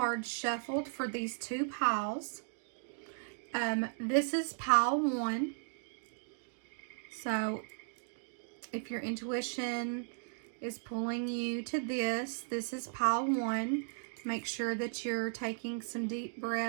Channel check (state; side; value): silent; left; digital silence